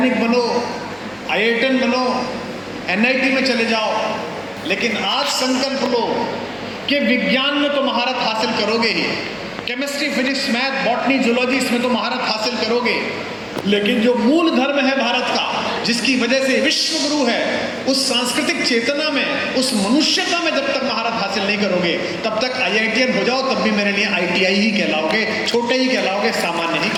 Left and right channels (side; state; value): both; identical; correlation 1.00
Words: बनो, IITian बनो, NIT में चले जाओ, लेकिन आज संकल्प लो कि विज्ञान में तो महारत हासिल करोगे ही, chemistry, physics, math, botany, zoology, इसमें तो महारत हासिल करोगे, लेकिन जो मूल धर्म है भारत का, जिसकी वजह से विश्व गुरु है, उस सांस्कृतिक चेतना में, उस मनुष्यता में जब तक महारत हासिल नहीं करोगे, तब तक IITian हो जाओ, तब भी मेरे लिए ITI ही कहलाओगे, छोटे ही कहलाओगे, सामान्य ही